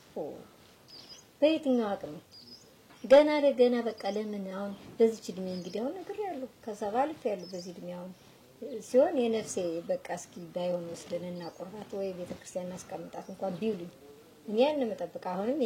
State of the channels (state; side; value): identical; both; correlation 1.00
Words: በየትኛው አቅም ገና ለገና በቃ ለምን አሁን በዚህ እድሜ እንግዲህ አሁን ነገር ያለው ከሰባልፍ ያለው በዚህ እድሜ አሁን ሲሆን የነፍሴ በቃ እስኪ ባይሆን ወስደንና ቁርባት ወይ ቤተክርስቲያን አስቀምጣት እንኳን ቢውልኝ እኔ ያን መጠበቅ አሁንም